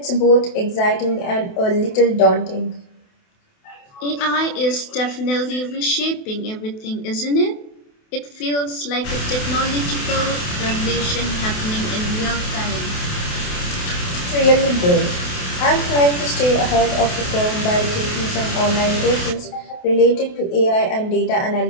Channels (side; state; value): right; late; 28 ms